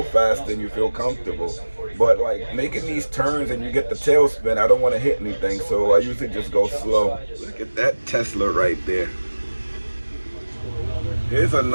fast and you feel comfortable. But like making these turns and you get the tailspin, I don't want to hit anything, so I usually just go slow. Look at that Tesla right there. Here's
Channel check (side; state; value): both; inverted; correlation -1.00